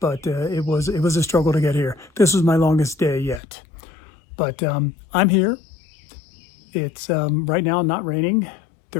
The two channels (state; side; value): drops out; right; at 3.4 s